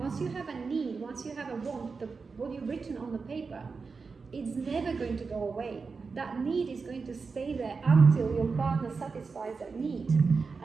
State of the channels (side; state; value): left; quieter; 4.7 dB